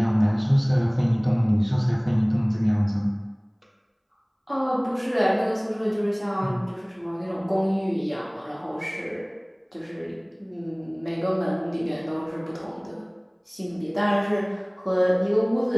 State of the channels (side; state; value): both; identical; correlation 1.00